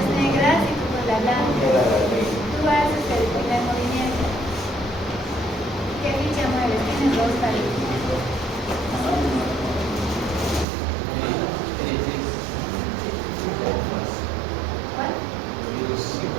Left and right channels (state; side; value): drops out; left; at 10.7 s